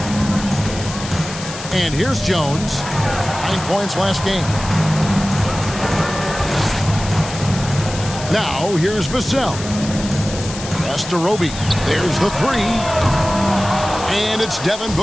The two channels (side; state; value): left; noise; hiss, 11 dB below the sound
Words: And here's Jones. 9 points last game. Now here's Vassell. Pass to Roby. There's the 3. And it's Devin